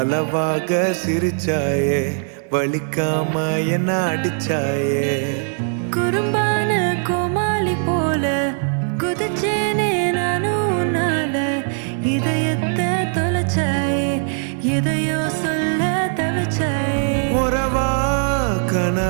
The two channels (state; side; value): silent; left; 57 dB below the other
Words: சிரிச்சாயே, வலிக்காம என்ன அடிச்சாயே. குறும்பான கோமாளி போல குதிச்சேனே நானும் உன்னால. இதயத்தை தொலைச்சாயே, எதையோ சொல்ல தவிச்சாயே. உறவா